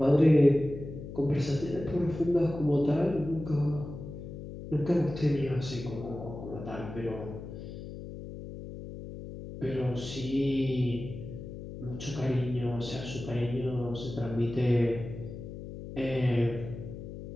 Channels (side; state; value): left; noise; hum, 11 dB below the sound